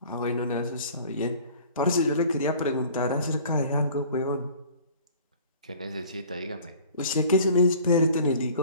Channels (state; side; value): inverted; both; correlation -0.48